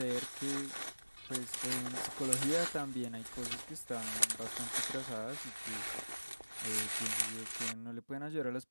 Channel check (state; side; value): inverted; both; correlation -1.00